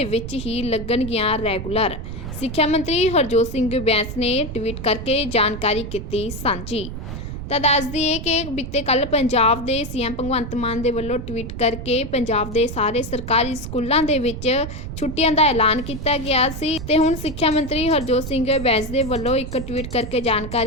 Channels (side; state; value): right; noise; rumble, 8 dB below the sound